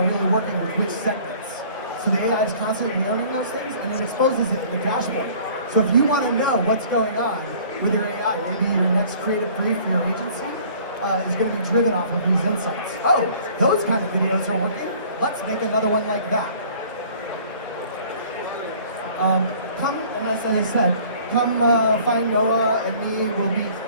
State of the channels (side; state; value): both; inverted; correlation -0.51